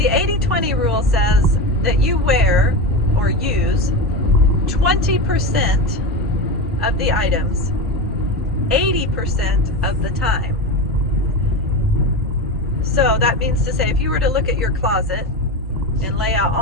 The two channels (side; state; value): both; normal; correlation 0.20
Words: 80-20 rule says that you wear or use 20% of the items 80% of the time. So that means to say, if you were to look at your closet and lay out